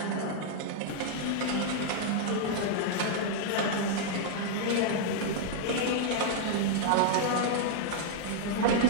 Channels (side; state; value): both; different; correlation -0.01